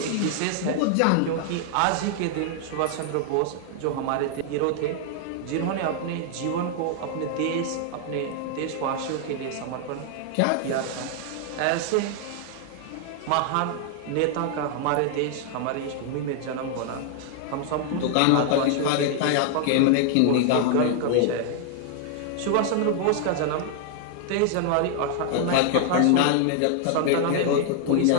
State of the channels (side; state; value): both; different; correlation 0.00